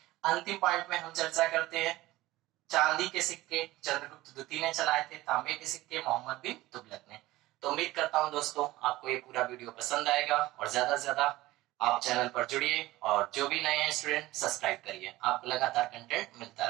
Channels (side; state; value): left; quieter; 17.8 dB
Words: अंतिम पॉइंट में हम चर्चा करते हैं चांदी के सिक्के चंद्रगुप्त द्वितीय ने चलाए थे, तांबे के सिक्के मोहम्मद बिन तुगलक ने। तो उम्मीद करता हूं दोस्तों आपको ये पूरा वीडियो पसंद आएगा और ज्यादा से ज्यादा आप चैनल पर जुड़िए और जो भी नए हैं स्टूडेंट सब्सक्राइब करिए, आपको लगातार कंटेंट मिलता